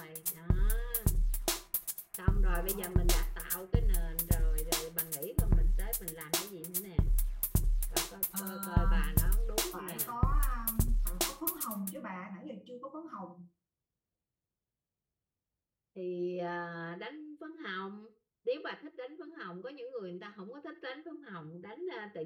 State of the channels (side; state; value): both; identical; correlation 1.00